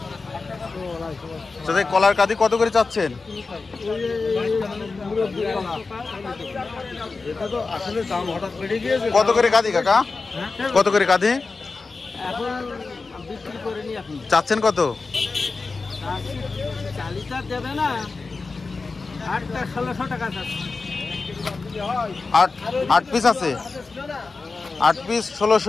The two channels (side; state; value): right; quieter; 4.1 dB